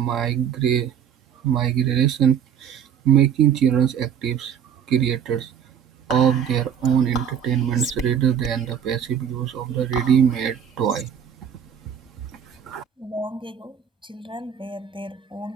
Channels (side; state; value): left; quieter; 8.3 dB